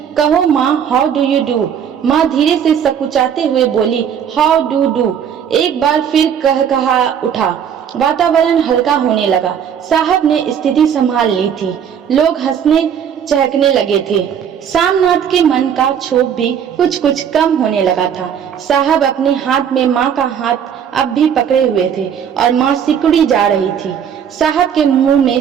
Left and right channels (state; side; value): quieter; left; 8.3 dB